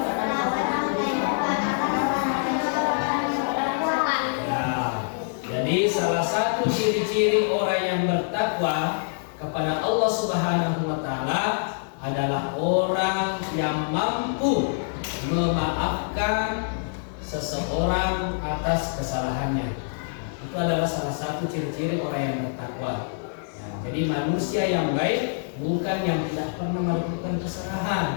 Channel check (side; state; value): right; silent; 61 dB below the other